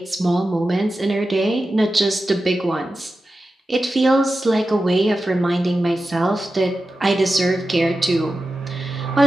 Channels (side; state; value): both; normal; correlation 0.92